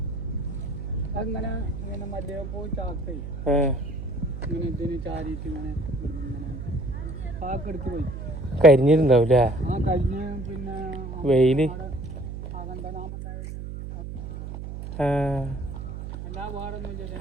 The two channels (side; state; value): right; noise; hum, 8 dB below the sound